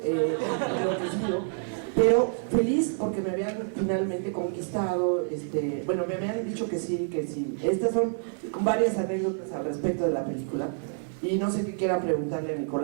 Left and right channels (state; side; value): silent; left; 59 dB below the other